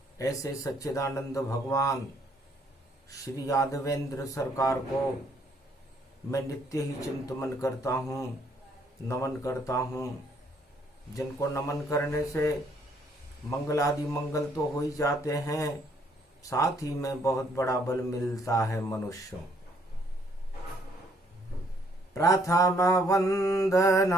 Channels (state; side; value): normal; both; correlation 0.67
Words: ऐसे सच्चिदानंद भगवान श्री यादवेंद्र सरकार को मैं नित्य ही चिंतन करता हूँ, नमन करता हूँ। जिनको नमन करने से मंगल आदि मंगल तो हो ही जाते हैं, साथ ही में बहुत बड़ा बल मिलता है मनुष्यों। प्रथम